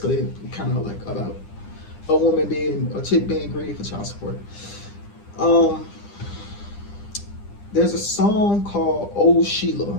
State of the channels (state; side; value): late; right; 9.9 ms